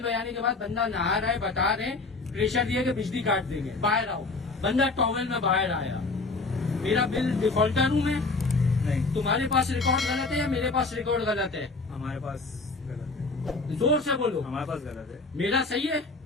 बजाने के बाद बंदा नहा रहा है, बता रहे हैं, प्रेशर दिया कि बिजली काट देंगे, बाहर आओ। बंदा टॉवेल में बाहर आया। मेरा बिल डिफॉल्टर हूँ मैं? नहीं, तुम्हारे पास रिकॉर्ड गलत है या मेरे पास रिकॉर्ड गलत है? हमारे पास गलत है। जोर से बोलो। हमारे पास गलत है। मेरा सही है?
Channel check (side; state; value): right; quieter; 3.6 dB